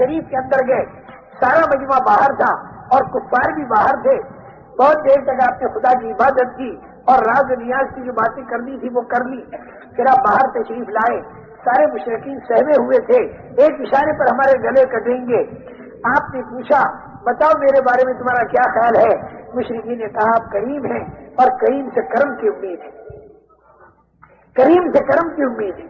کے اندر گئے، سارا مجمع باہر تھا اور کفار بھی باہر تھے۔ بہت دیر تک آپ نے خدا کی عبادت کی اور راز و نیاز کی جو باتیں کرنی تھی وہ کر لی۔ پھر آپ باہر تشریف لائے، سارے مشرکین سہمے ہوئے تھے، ایک اشارے پر ہمارے گلے کٹیں گے۔ آپ نے پوچھا بتاؤ میرے بارے میں تمہارا کیا خیال ہے؟ مشرکین نے کہا آپ کریم ہیں اور کریم سے کرم کی امید ہے، کریم سے کرم کی امید ہے۔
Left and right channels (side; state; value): both; identical; correlation 1.00